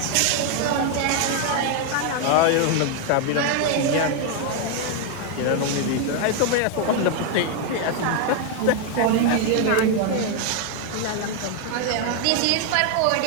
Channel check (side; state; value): both; different; correlation 0.01